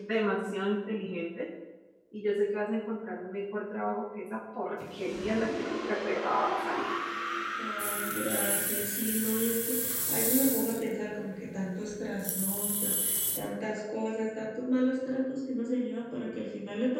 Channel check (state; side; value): identical; both; correlation 1.00